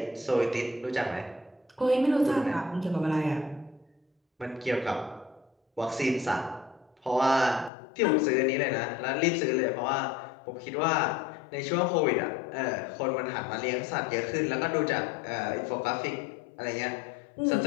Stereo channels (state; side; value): drops out; right; at 7.7 s